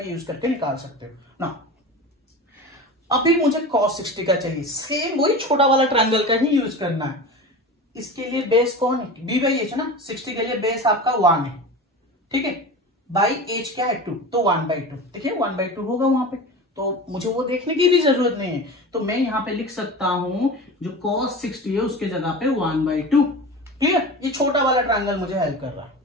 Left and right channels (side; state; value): both; normal; correlation 0.31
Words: यूज करके निकाल सकते हो ना। अभी मुझे cos 60 का चाहिए, सेम वही छोटा वाला ट्रायंगल का ही यूज करना है। इसके लिए बेस कौन है, b/h ना। 60 के लिए बेस आपका 1 है, ठीक है, बाई h क्या है 2, तो 1/2। देखिए 1/2 होगा वहां पे, तो मुझे वो देखने की भी जरूरत नहीं है। तो मैं यहाँ पे लिख सकता हूं जो cos 60 है उसके जगह पे 1/2। क्लियर? ये छोटा वाला ट्रायंगल मुझे हेल्प कर रहा है।